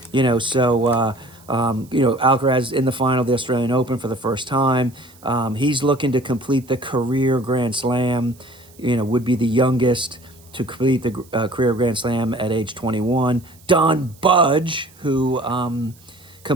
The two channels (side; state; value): right; noise; hiss, 27 dB below the sound